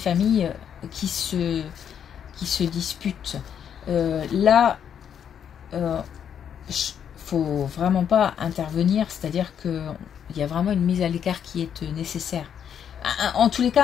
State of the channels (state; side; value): quieter; right; 8.5 dB